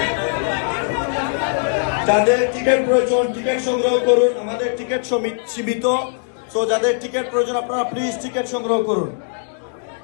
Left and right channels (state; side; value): silent; right; digital silence